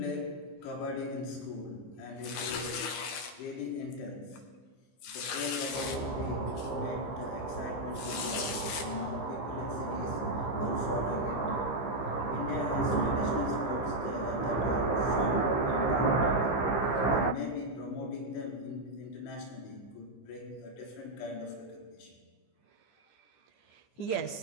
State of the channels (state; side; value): late; right; 15 ms